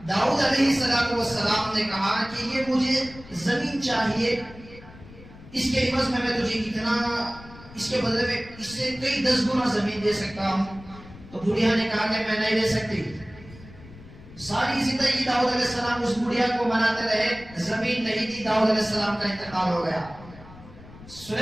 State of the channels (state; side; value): noise; left; rumble, 19 dB below the sound